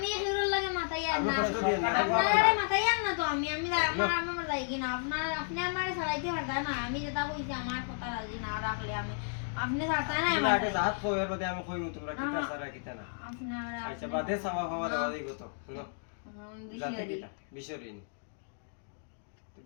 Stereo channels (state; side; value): silent; right; digital silence